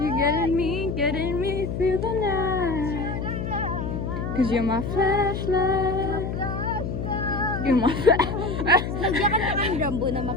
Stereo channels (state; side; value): noise; left; hum, 4 dB below the sound